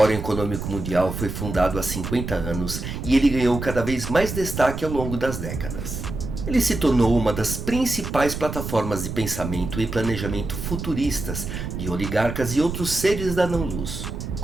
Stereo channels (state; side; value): noise; right; rumble, 6 dB below the sound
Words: Econômico Mundial foi fundado há 50 anos e ele ganhou cada vez mais destaque ao longo das décadas. Ele se tornou uma das principais plataformas de pensamento e planejamento futuristas de oligarcas e outros seres da não-luz.